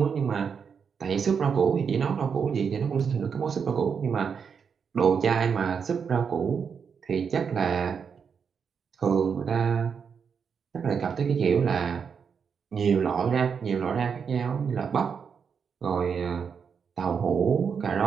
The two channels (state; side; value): quieter; left; 6.5 dB